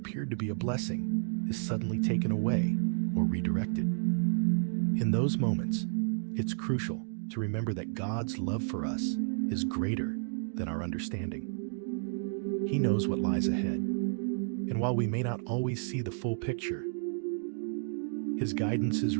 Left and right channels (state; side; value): silent; left; digital silence